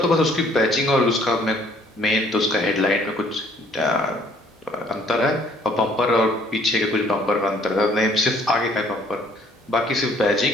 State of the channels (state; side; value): normal; both; correlation 0.61